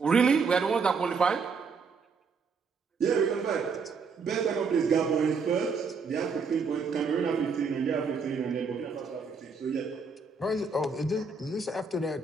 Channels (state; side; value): quieter; left; 4.9 dB